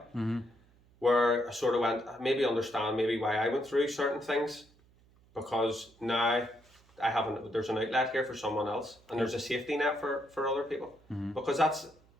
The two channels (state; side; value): noise; right; hum, 30 dB below the sound